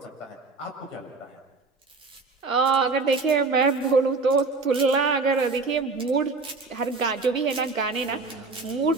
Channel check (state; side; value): quieter; left; 4.0 dB